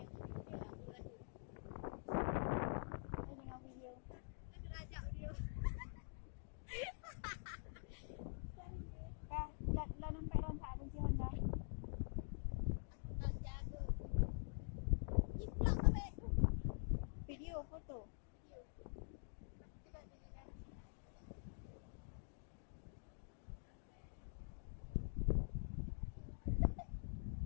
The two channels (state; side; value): silent; right; digital silence